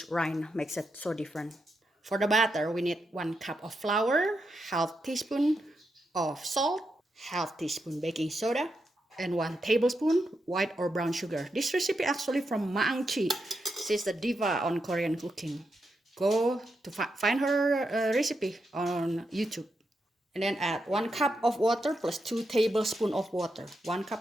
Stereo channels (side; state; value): both; normal; correlation 0.85